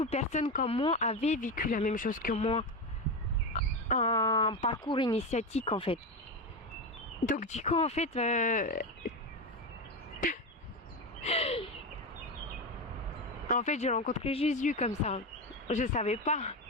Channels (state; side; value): normal; both; correlation 0.16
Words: personnes comme moi avaient vécu la même chose que moi. Un parcours initiatique en fait. Donc du coup en fait en fait j'ai rencontré Jésus comme ça. Je savais pas